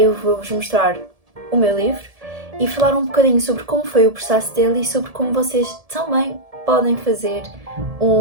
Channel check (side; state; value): left; late; 1.7 ms